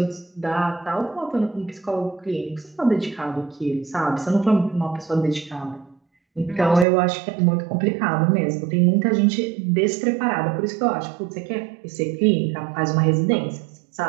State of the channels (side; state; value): left; drops out; at 6.9 s